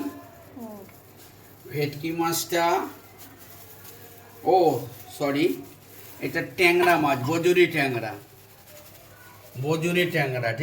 হুম, ভেটকি মাছটা, ও সরি, এটা ট্যাংরা মাছ, বজুরি ট্যাংরা। বজুরি ট্যাংরা,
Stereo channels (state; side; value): identical; both; correlation 1.00